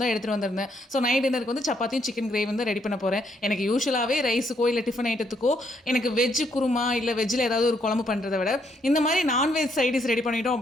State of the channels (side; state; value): both; normal; correlation 0.73